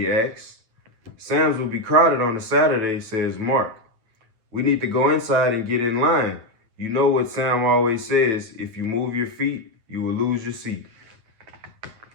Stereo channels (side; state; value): left; late; 9.2 ms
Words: asks. Sam's will be crowded on a Saturday, says Mark. We need to go inside and get in line. You know what Sam always says, if you move your feet, you will lose your seat.